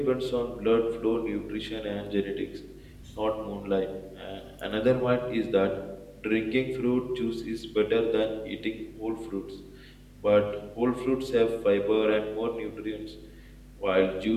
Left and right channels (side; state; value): both; identical; correlation 1.00